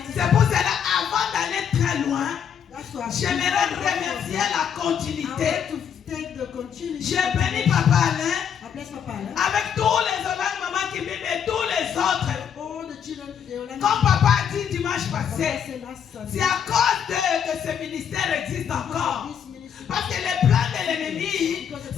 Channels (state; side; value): quieter; right; 8.1 dB